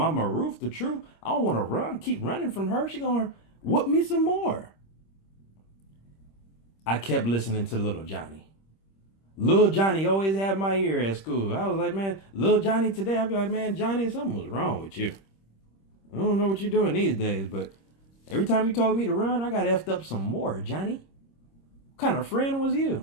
Ruth, the truth. I don't want to run, keep running from her. She gonna whoop me some more. I kept listening to little Johnny. Little Johnny always had my ear at school. I was like, man, little Johnny today, I'd be like, man, Johnny, something was wrong with you. I don't know what you're doing these days, but every time you told me to run, I got effed up some more, Johnny. What kind of friend was you?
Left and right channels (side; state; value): right; late; 26 ms